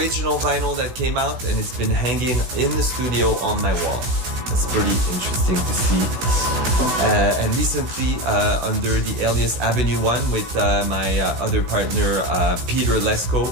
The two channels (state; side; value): late; left; 16 ms